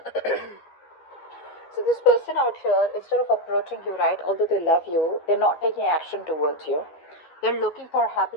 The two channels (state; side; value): late; right; 13 ms